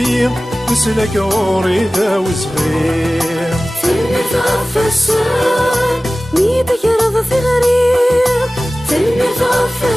وسلك وريده وصغير فالمتعفسان ميدك رض ثغري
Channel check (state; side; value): normal; both; correlation 0.97